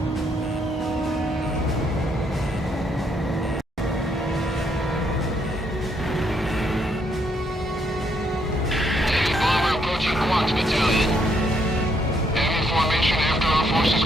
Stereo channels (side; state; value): both; normal; correlation 0.73